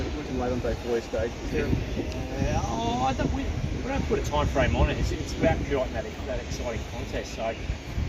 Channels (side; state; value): both; identical; correlation 1.00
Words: looking late on day 4 stage. Is there We don't put a time frame on it. It's about creating that exciting contest. So,